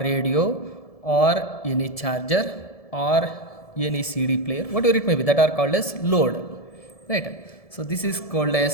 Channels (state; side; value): late; right; 1.7 ms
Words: or any charger or any CD player, whatever it may be, that are called as load, right? So this is called